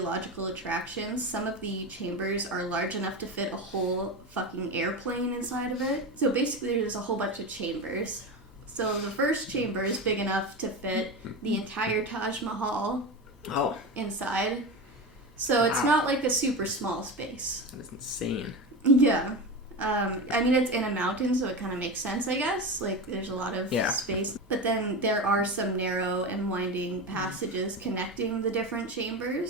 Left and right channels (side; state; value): both; normal; correlation 0.23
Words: attractions. Some of the chambers are large enough to fit a whole fucking airplane inside of it. So basically there's a whole bunch of chambers. So the first chamber is big enough to fit the entire Taj Mahal inside. So it's not like a super small space. That is insane. Yeah. I mean, it's in a mountain, so it kind of makes sense, I guess. Like, there's a lot of space. But then there are some narrow and winding passages connecting the different